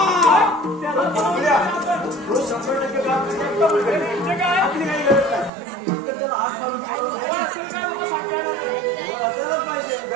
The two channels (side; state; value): left; drops out; at 5.5 s